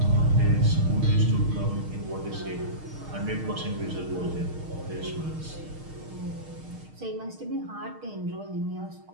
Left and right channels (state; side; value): late; left; 6.5 ms